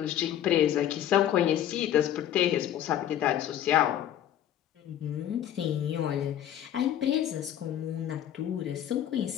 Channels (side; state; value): right; quieter; 11.0 dB